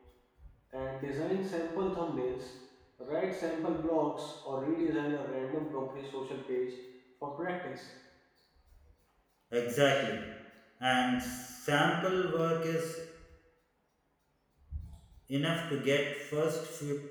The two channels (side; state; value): both; identical; correlation 1.00